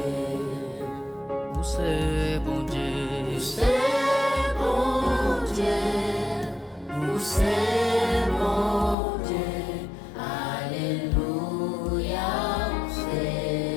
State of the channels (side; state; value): right; drops out; at 9.0 s